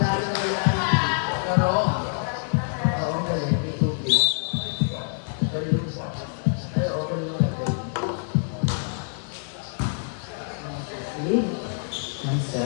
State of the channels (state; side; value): silent; right; 61 dB below the other